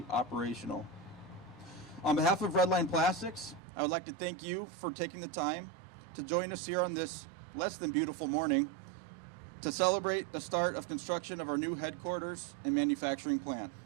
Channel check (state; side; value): drops out; left; at 3.6 s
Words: operational. On behalf of Redline Plastics, I would like to thank you for taking the time to join us here on this less than beautiful morning to celebrate the start of construction of our new headquarters and manufacturing plant.